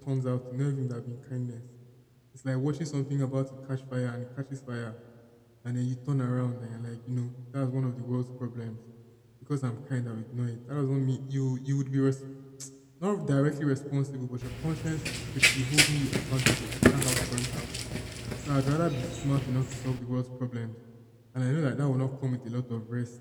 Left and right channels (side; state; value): both; identical; correlation 1.00